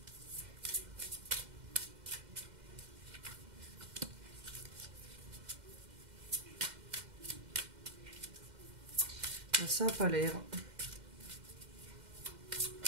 Ça n'a pas l'air.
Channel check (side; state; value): left; late; 2.1 ms